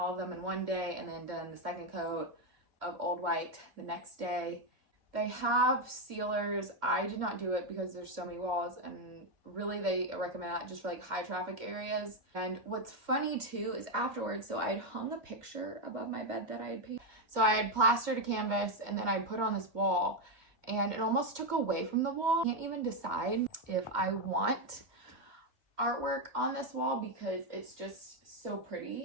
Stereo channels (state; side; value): late; left; 2.1 ms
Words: of them in one day, and then done the second coat of Old White the next day. They have sealers. I did not do it because there's so many walls, and really they recommend that just for like high traffic areas. And what's funny too is afterwards, so I had hung a picture above my bed that I had painted. So I had plastered a canvas and then I put on this wall, and it almost took away from the wall. I can't even decide if I want artwork on this wall because it's just so